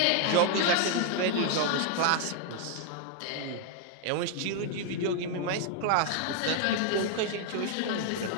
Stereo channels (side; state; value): both; different; correlation 0.00